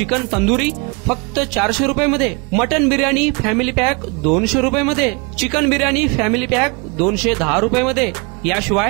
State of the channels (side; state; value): left; quieter; 30.9 dB